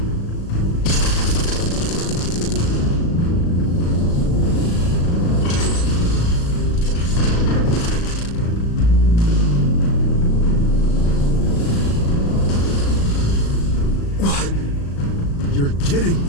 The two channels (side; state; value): right; late; 36 ms